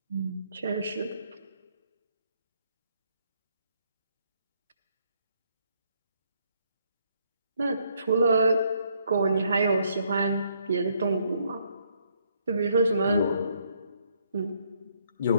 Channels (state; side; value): inverted; both; correlation -0.70